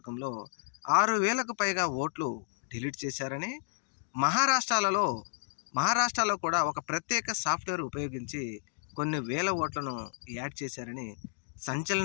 6,000కు పైగా ఓట్లు డిలీట్ చేశారని, మహారాష్ట్రలో కూడా ఒక ప్రత్యేక సాఫ్ట్వేర్ ఉపయోగించి కొన్ని వేల ఓట్లను యాడ్ చేశారని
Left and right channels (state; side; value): silent; right; digital silence